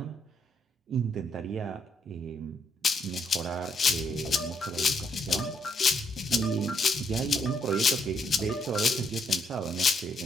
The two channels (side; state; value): both; normal; correlation 0.73